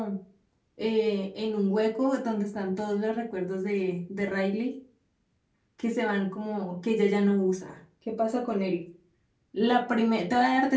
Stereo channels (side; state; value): both; identical; correlation 1.00